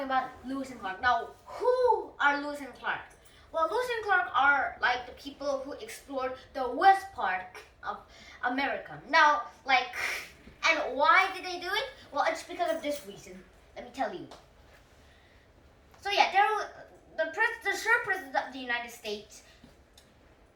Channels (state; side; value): identical; both; correlation 1.00